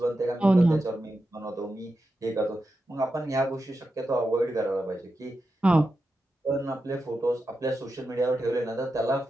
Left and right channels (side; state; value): both; normal; correlation 0.89